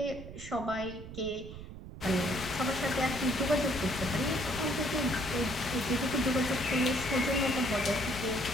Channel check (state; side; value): noise; right; rumble, 12 dB below the sound